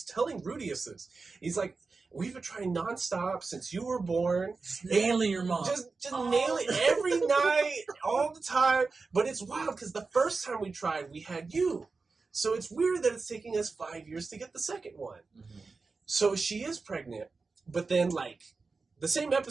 telling Rudius this. He's like, we've been trying nonstop since you were born. Just nailing your mom. Just nail it every night, all the time. But it's wild because the first time we tried, we had you. So it's weird that it's taking us 5 years to get the second one. Mm-hmm. So she is pregnant, but then like the same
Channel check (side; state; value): left; quieter; 4.2 dB